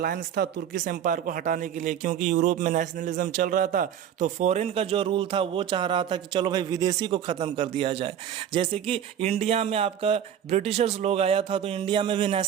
था तुर्किश एम्पायर को हटाने के लिए, क्योंकि यूरोप में नेशनलिज्म चल रहा था। तो फॉरेन का जो रूल था वो चाह रहा था कि चलो भाई विदेशी को ख़त्म कर दिया जाए। जैसे कि इंडिया में आपका ब्रिटिशर्स लोग आया था तो इंडिया में भी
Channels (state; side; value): quieter; left; 9.4 dB